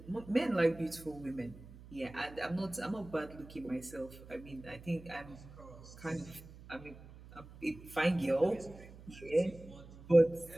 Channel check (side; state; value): right; noise; hum, 18 dB below the sound